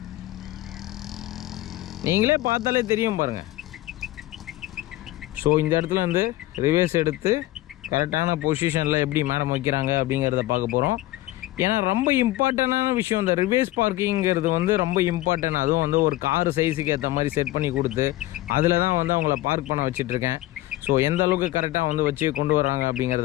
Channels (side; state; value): right; quieter; 16.9 dB